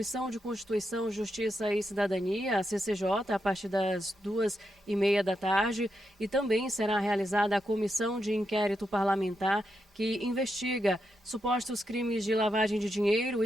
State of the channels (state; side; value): normal; both; correlation 0.84